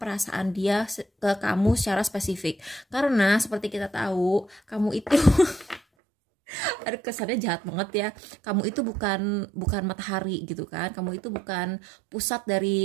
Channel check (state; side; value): drops out; left; at 5.8 s